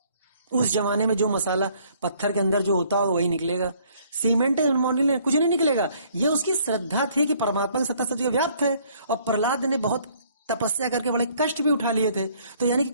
उस जमाने में जो मसाला पत्थर के अंदर जो होता है वही निकलेगा, सीमेंट मोरंग कुछ नहीं निकलेगा। ये उसकी श्रद्धा थी कि परमात्मा की सत्ता सत्य व्याप्त है। और प्रहलाद ने बहुत तपस्या करके बड़े कष्ट भी उठा लिए थे। तो यानी कि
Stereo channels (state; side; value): inverted; both; correlation -0.62